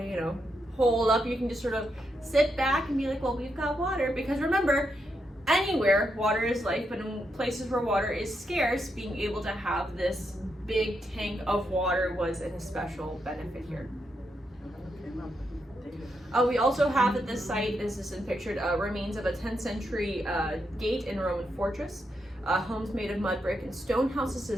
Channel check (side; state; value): both; normal; correlation 0.82